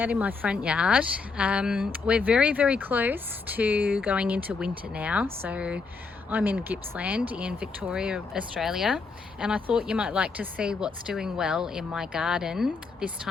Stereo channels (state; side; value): quieter; right; 4.5 dB